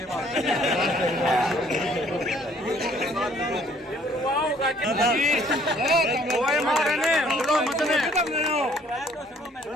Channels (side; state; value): both; normal; correlation 0.60